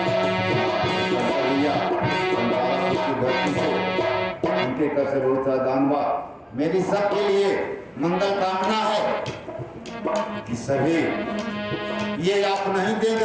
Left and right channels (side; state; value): both; identical; correlation 1.00